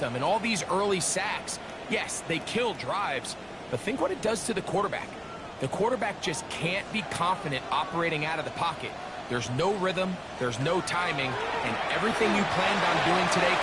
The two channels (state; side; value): identical; both; correlation 1.00